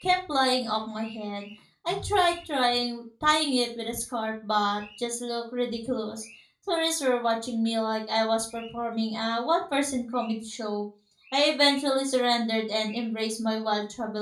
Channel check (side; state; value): both; identical; correlation 1.00